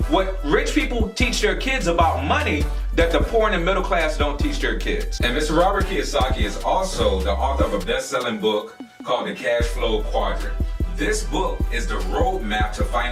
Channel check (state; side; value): identical; both; correlation 1.00